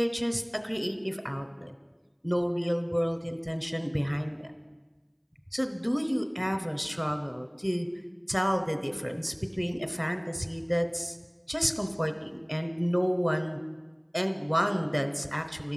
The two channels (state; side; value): identical; both; correlation 1.00